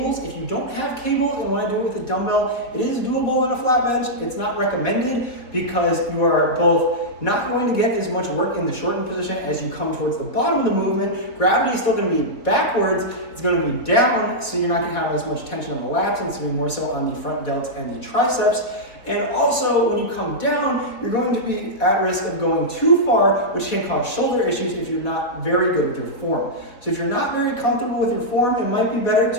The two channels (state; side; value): late; right; 4.1 ms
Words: If you don't have cables and want to do it with a dumbbell, it is doable on a flat bench. It's not recommended because you are both not going to get as much work in the shortened position as you come towards the bottom of the movement. Gravity is still going to be backwards. It's going to be down, so you're not going to have as much tension on the lats, and it's going to be more so on the front delts and the triceps. And also, when you come down, you're going to be at risk of going too far, which can cause shoulder issues if you're not very good with your form. So if you're not very comfortable with your form, it might be better